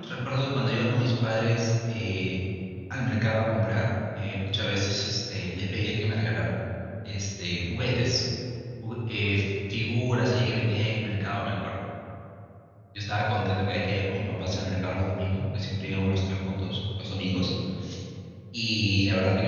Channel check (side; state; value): both; identical; correlation 1.00